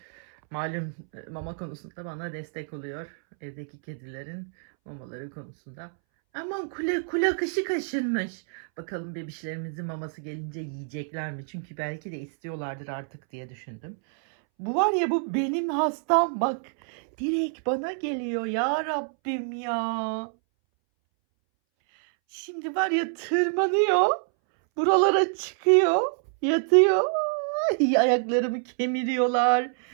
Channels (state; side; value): silent; left; 60 dB below the other